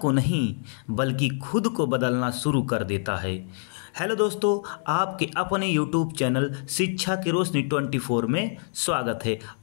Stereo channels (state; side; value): silent; right; digital silence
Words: नहीं बल्कि खुद को बदलना शुरू कर देता है। हेलो दोस्तों, आपके अपने यूट्यूब चैनल शिक्षा की रोशनी 24 में स्वागत है।